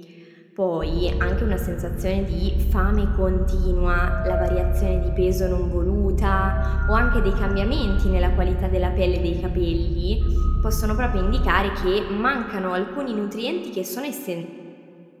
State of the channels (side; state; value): both; identical; correlation 1.00